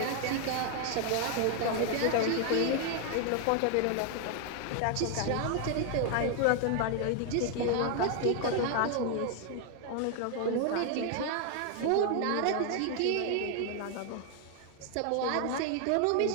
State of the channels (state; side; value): different; both; correlation 0.00